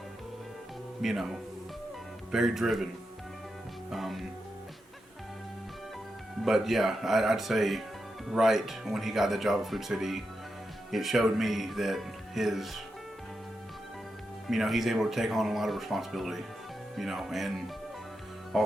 you know, very driven. But yeah, I'd say right when he got the job at Food City, it showed me that his, you know, he's able to take on a lot of responsibility, you know, and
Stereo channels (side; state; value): both; normal; correlation 0.87